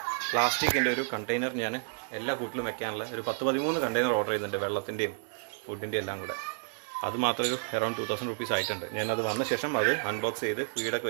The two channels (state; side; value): silent; left; 57 dB below the other